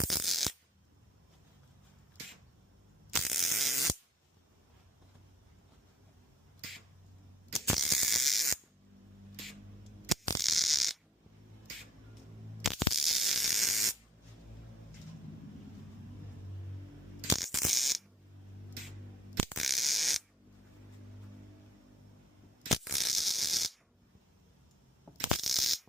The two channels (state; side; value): normal; both; correlation 0.55